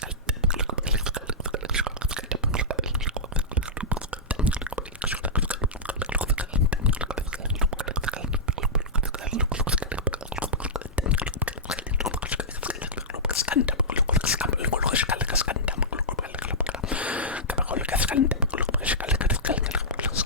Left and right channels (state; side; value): normal; both; correlation -0.12